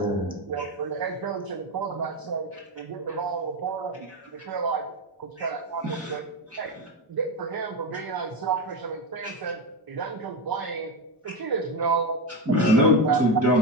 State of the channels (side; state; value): both; normal; correlation 0.14